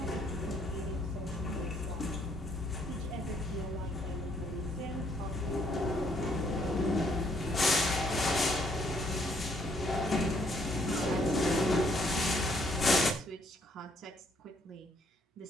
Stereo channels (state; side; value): normal; both; correlation 0.68